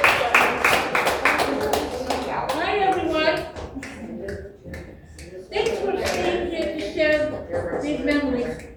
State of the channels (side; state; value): both; identical; correlation 1.00